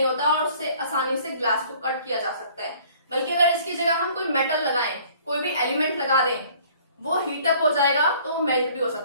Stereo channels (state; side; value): inverted; both; correlation -0.54